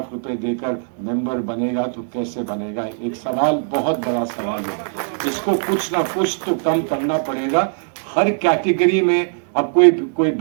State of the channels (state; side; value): silent; left; digital silence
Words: دے کر ممبر بنے گا تو کیسے بنے گا؟ ایک سوال، بہت بڑا سوال ہے، اس کو کچھ نہ کچھ تو کم کرنا پڑے گا۔ ہر کیٹیگری میں اب کوئی